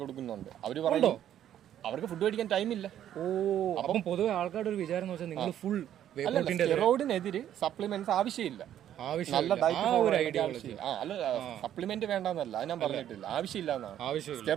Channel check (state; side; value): quieter; left; 10.9 dB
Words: കൊടുക്കുന്നുണ്ട്. അവര് പറയുന്നു അവർക്ക് ഫുഡ് കഴിക്കാൻ ടൈമില്ല. അപ്പം പൊതുവെ ആൾക്കാരുടെ ഒരു വിചാരം എന്ന് വെച്ചാൽ നിങ്ങൾ ഫുൾ സ്റ്റെറോയിഡിനെതിരെ സപ്ലിമെന്റ്സ് ആവശ്യമില്ല. നല്ല ഡയറ്റ് അല്ല, സപ്ലിമെന്റ് വേണ്ടെന്നല്ല, അത് ഞാൻ പറഞ്ഞിട്ടില്ല, ആവശ്യമില്ല എന്നാണ്.